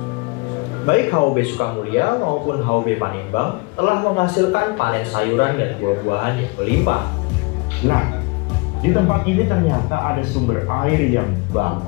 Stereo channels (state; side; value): quieter; right; 28.5 dB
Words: Baik HOB Sukamulya maupun HOB Panimbang telah menghasilkan panen sayuran dan buah-buahan yang berlimpah. Nah, di tempat ini ternyata ada sumber air yang